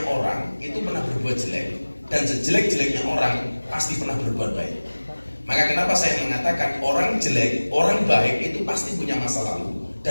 orang itu pernah berbuat jelek, dan sejelek-jeleknya orang pasti pernah berbuat baik. Maka kenapa saya mengatakan orang jelek, orang baik itu pasti punya masa lalu,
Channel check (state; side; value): inverted; both; correlation -1.00